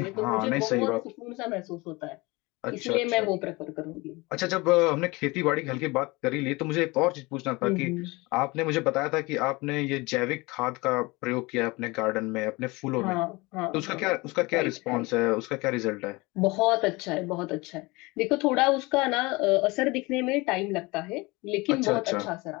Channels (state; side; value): quieter; right; 24.0 dB